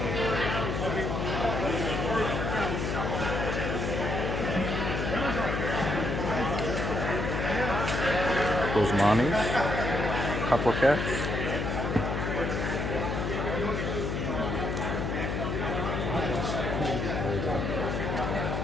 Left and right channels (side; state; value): left; noise; hum, 1 dB below the sound